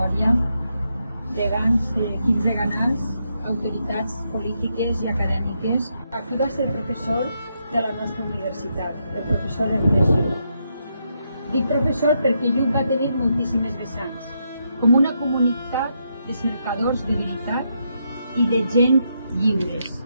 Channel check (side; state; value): both; inverted; correlation -0.80